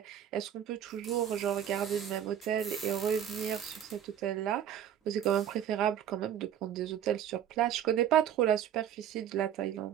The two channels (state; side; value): quieter; left; 9.9 dB